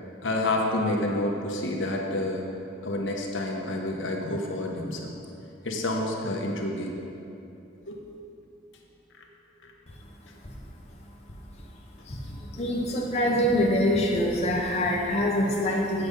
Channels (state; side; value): normal; both; correlation 0.34